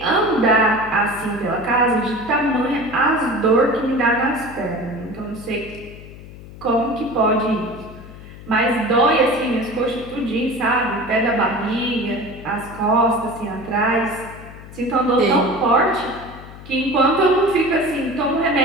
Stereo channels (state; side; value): noise; left; hum, 16 dB below the sound